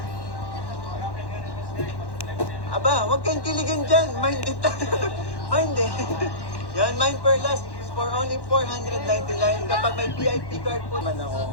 Aba, huwag kang kiligan dyan. Mind it. Mind it. Yan, Mine per last is for only 499. Kapag may VIP card po naman ako,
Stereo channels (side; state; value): right; late; 1.1 ms